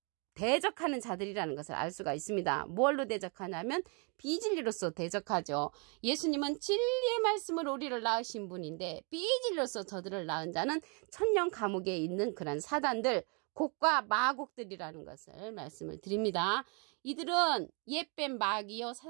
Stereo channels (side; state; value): left; quieter; 34.9 dB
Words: 대적하는 자들이라는 것을 알 수가 있습니다. 뭘로 대적하냐면 비진리로서 대적하죠. 예수님은 진리의 말씀으로 우리를 낳으신 분인데 비진리로서 저들을 낳은 자는 천년 감옥에 있는 그런 사단들, 곡과 마곡들이라는 것을 말씀을 드립니다. 이들은 옛뱀 마귀요